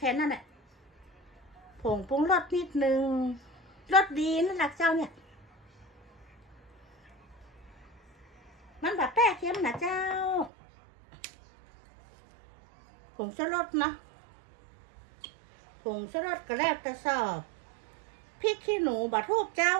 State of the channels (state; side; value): drops out; left; at 10.5 s